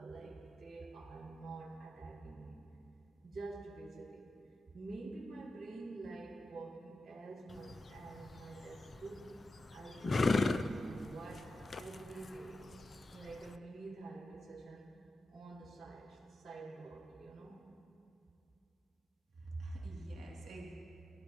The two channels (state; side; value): normal; both; correlation 0.91